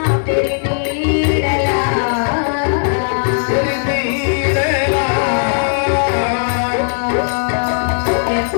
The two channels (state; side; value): silent; right; 58 dB below the other